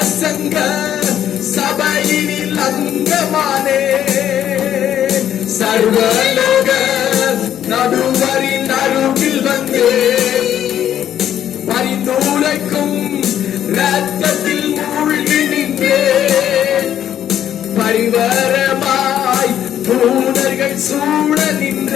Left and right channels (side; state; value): right; quieter; 10.5 dB